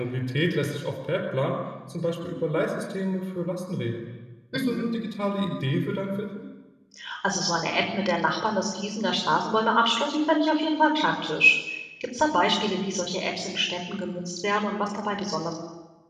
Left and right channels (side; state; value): both; identical; correlation 1.00